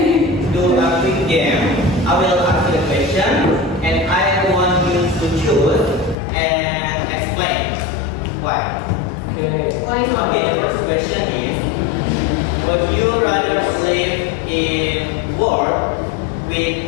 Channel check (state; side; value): drops out; right; at 6.2 s